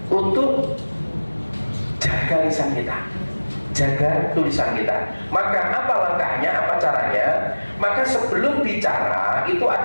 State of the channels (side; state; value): both; inverted; correlation -1.00